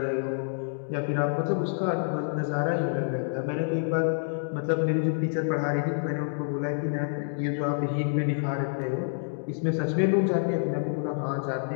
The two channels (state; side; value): silent; right; digital silence